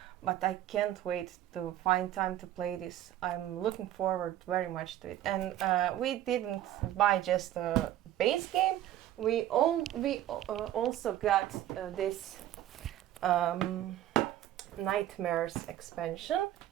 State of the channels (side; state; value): left; quieter; 12.7 dB